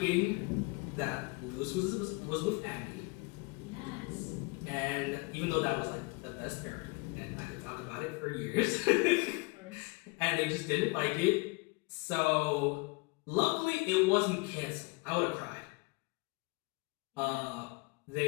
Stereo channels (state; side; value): quieter; right; 27.6 dB